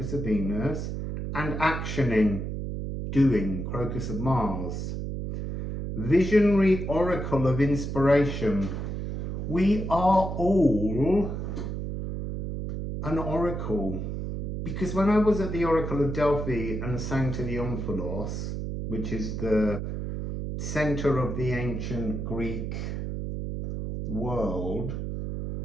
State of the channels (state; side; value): noise; right; hum, 4 dB below the sound